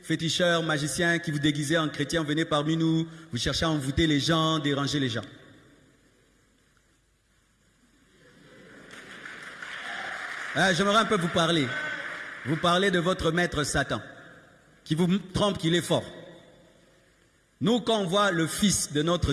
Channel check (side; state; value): both; identical; correlation 1.00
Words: féticheurs, magiciens, qui vous déguisez en chrétiens, venez parmi nous, vous cherchez à envoûter les gens, déranger les gens. J'aimerais un peu vous parler. Vous parlez de votre maître Satan, qui vous trompe qu'il est fort. Nous, quand on voit le fils de notre